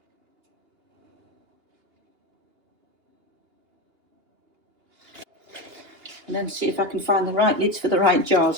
And then see if I can find the right lids for the right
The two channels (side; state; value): left; late; 2.8 ms